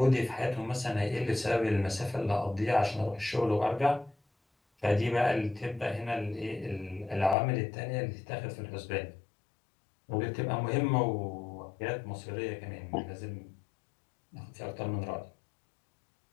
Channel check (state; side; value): drops out; right; at 7.4 s